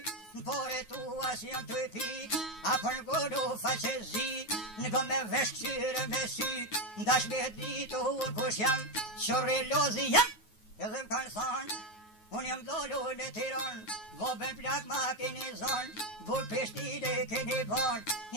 por e tu as jam të e pik, apër godu faqe zi, në go me vesh këqyre me sy, ndash me ditu unë kush jam, që relozi jam, edhe më kanë thonë, unë jam dolu në Tiran, voben plak ma keni zonë, bull Prishtine keni bon,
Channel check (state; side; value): late; right; 9.4 ms